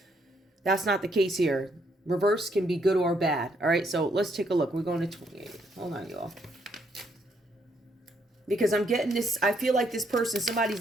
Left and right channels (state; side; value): normal; both; correlation 0.73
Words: not the case here. Reverse can be good or bad. All right, so let's take a look. We're going to 28. Hold on, y'all. Because I'm getting this, I feel like this person,